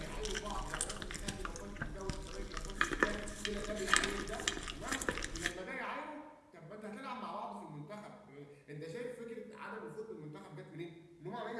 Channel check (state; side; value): identical; both; correlation 1.00